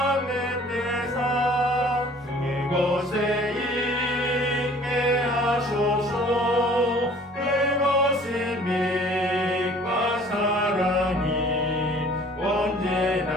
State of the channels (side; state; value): both; normal; correlation 0.52